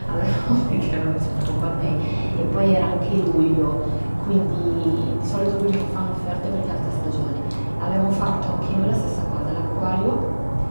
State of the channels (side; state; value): both; inverted; correlation -1.00